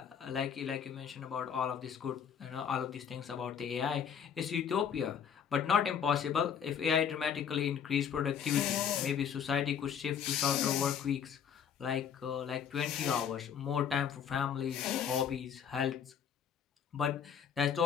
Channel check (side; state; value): right; quieter; 7.9 dB